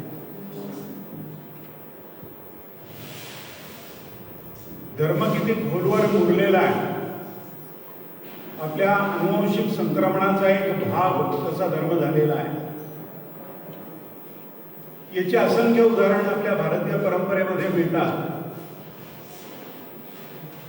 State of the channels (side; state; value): both; identical; correlation 1.00